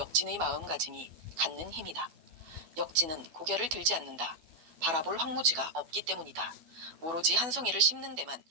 마음가짐이 갖는 힘이다. 역진은 고개를 들지 않는다. 바라볼 황무지가 없기 때문이다. 오로지 한 송이를 심는 데만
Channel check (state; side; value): late; left; 12 ms